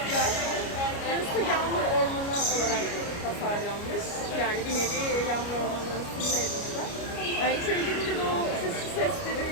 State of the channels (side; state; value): right; late; 29 ms